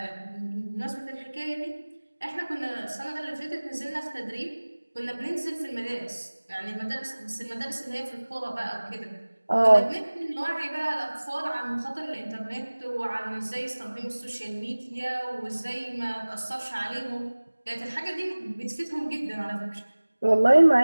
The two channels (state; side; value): inverted; both; correlation -1.00